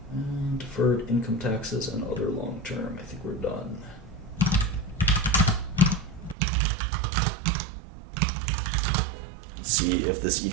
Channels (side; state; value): left; drops out; at 6.4 s